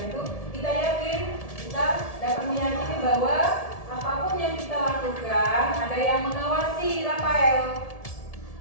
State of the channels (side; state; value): right; late; 1.7 ms